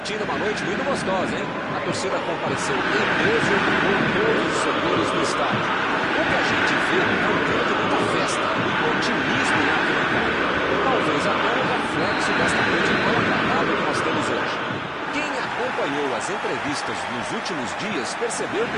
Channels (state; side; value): identical; both; correlation 1.00